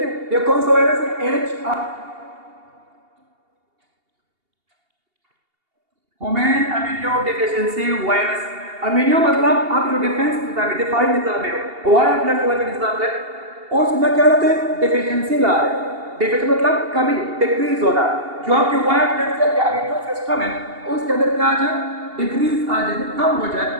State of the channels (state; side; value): late; left; 2.8 ms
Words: ये कौन सा वायरस है? Human immuno deficiency virus. Immuno मतलब आप जो डिफेंस निजाम है, दिफाई निजाम है, वायर ब्लड वाला जो निजाम है, उसमें क्या होता है? डिफिशिएंसी ला रहे हैं। डिफिशिएंसी मतलब कमी, डिक्रीज होना। जो आपके वायर ब्लड सेल या इम्यून सिस्टम है, उसके अंदर क्या आ जाए? डिक्रीज आ जाए, कम हो जाए।